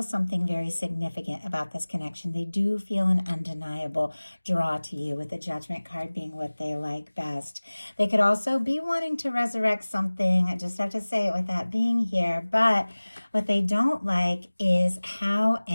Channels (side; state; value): both; inverted; correlation -1.00